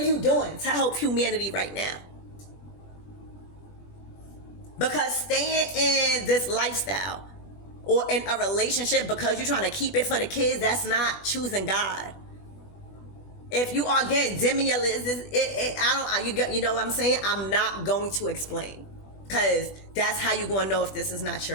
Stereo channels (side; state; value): right; late; 20 ms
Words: you doing to help humanity right now? Because staying in this lifestyle or in a relationship because you're trying to keep it for the kids, that's not choosing God. If you are getting you know what I'm saying? I'm not going to explain, because that's how you're going to know if this is not